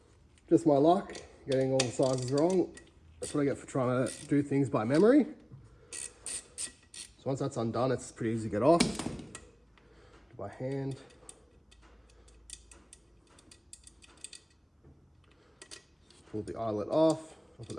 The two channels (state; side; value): identical; both; correlation 1.00